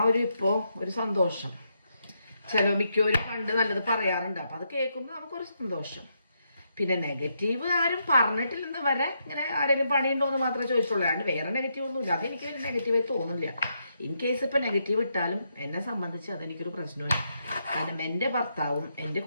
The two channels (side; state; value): both; inverted; correlation -0.79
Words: ഒരു ഇപ്പോ ഒരു സന്തോഷം. മിക്കവരും പണ്ട് നല്ലത് പറയാറുണ്ട്, അപ്പൊ അത് കേൾക്കുമ്പോൾ നമുക്കൊരു സന്തോഷം. പിന്നെ നെഗറ്റീവ് ആരും പറഞ്ഞിട്ടില്ലെന്ന് വരെ ഇങ്ങനെ ആരെങ്കിലും പണിയുണ്ടോ എന്ന് മാത്രമേ ചോദിച്ചുള്ളൂ, അല്ലാണ്ട് വേറെ നെഗറ്റീവ് ഒന്നുമില്ല. അതെനിക്ക് വലിയ നെഗറ്റീവായി തോന്നുന്നില്ല. ഇൻ കേസ് ഇപ്പൊ നെഗറ്റീവ് ഇട്ടാലും എന്നെ സംബന്ധിച്ച് അതെനിക്കൊരു പ്രശ്നമില്ല. കാരണം എൻ്റെ ഭർത്താവും എൻ്റെ